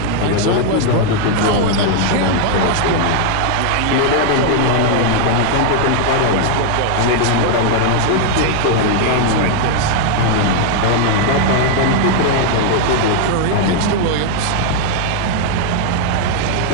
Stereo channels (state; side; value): different; both; correlation 0.00